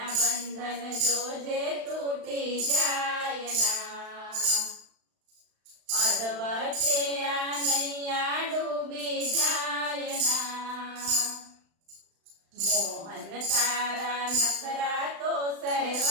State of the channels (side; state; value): left; late; 35 ms